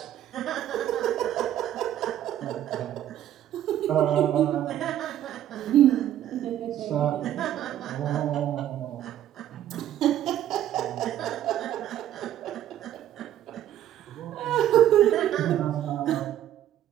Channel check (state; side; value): quieter; left; 11.8 dB